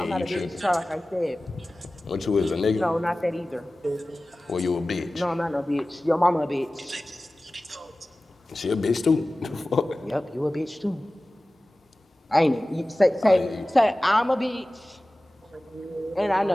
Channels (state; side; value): normal; both; correlation 0.97